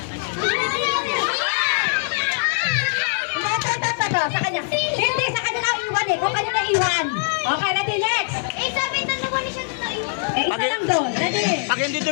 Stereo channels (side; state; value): right; silent; digital silence